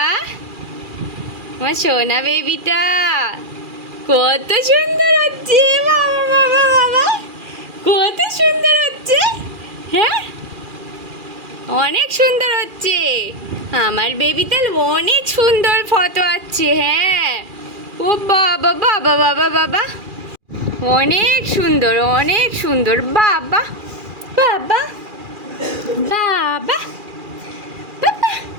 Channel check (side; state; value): left; late; 2.4 ms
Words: আমার সোনা বেবিটা। কত সুন্দর হচ্ছে, বাবা বাবা বাবা, কত সুন্দর হচ্ছে। হ্যাঁ, অনেক সুন্দর হচ্ছে আমার বেবিতে, অনেক সুন্দর ফটো আসছে। হ্যাঁ, ও বাবা বাবা বাবা বাবা, অনেক সুন্দর, অনেক সুন্দর। বাবা বাবা বাবা বাবা